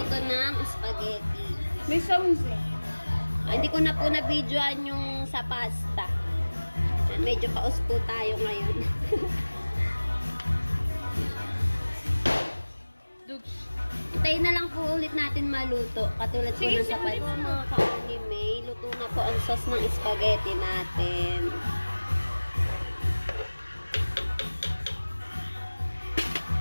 to ng spaghetti. May sounds eh. Hindi ko na po na-videoan yung sa pasta. Medyo paus po tayo ngayon. Tayo na lang po ulit natin maluto. Katulad po ng sa pasta. Mga ka-anime, luto na po ang sauce ng spaghetti natin.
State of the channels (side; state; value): both; inverted; correlation -1.00